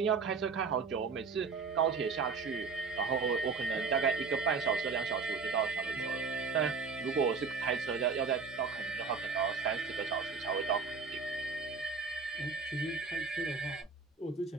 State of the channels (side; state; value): left; quieter; 5.1 dB